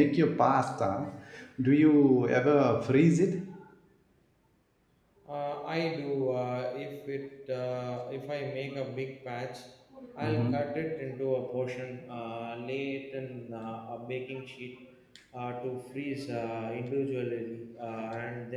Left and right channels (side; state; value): both; identical; correlation 1.00